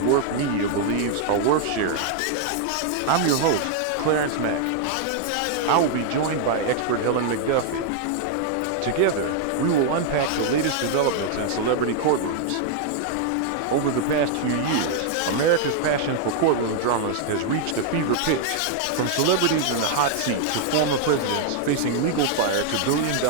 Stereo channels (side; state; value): both; different; correlation 0.00